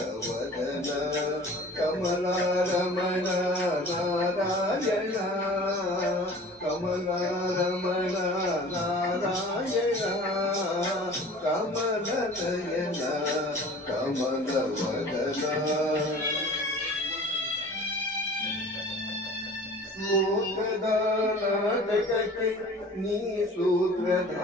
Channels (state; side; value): normal; both; correlation 0.44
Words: ಕಮಲಾರಮಣ ನಾರಾಯಣ ಕಮಲಾರಮಣ ನಾರಾಯಣ ಕಮಲನಯನ ಕಮಲವದನ ಲೋಕದ ನಾಟಕಕ್ಕೆ ನೀ